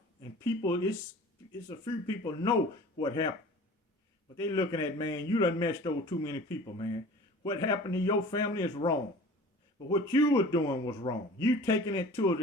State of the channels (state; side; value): normal; both; correlation 0.43